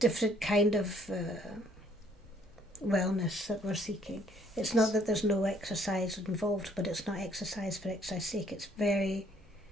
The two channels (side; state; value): both; normal; correlation 0.63